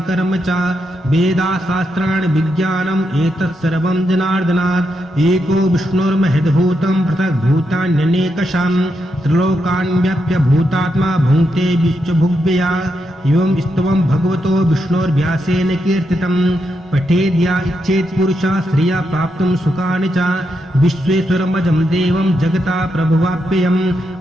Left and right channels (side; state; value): both; normal; correlation 0.83